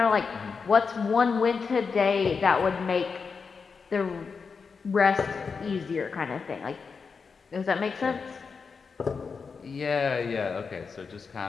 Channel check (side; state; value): right; quieter; 5.3 dB